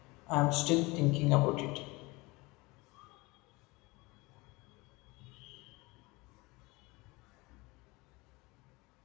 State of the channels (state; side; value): quieter; right; 23.9 dB